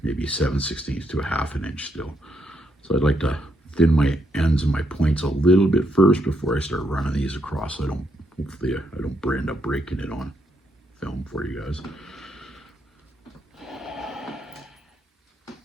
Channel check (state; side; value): normal; both; correlation 0.77